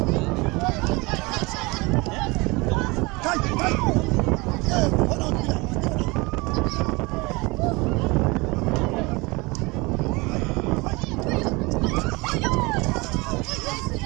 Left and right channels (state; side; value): quieter; left; 24.9 dB